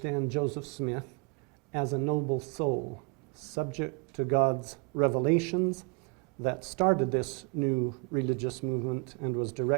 Joseph Smith as a noble soul, subject to God's revelations that started this new religious movement and was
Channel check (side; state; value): left; quieter; 33.7 dB